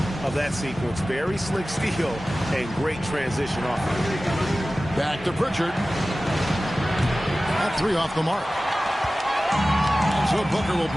of that sequence. Very slick steal and great transition off. Back to Pritchard. That 3 off the mark. And so Booker will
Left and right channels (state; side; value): normal; both; correlation 0.96